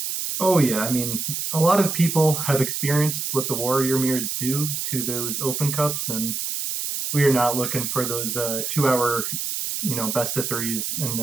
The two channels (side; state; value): right; noise; hiss, 3 dB below the sound